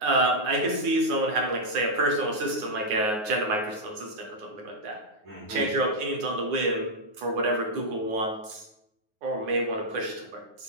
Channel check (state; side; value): late; left; 9.5 ms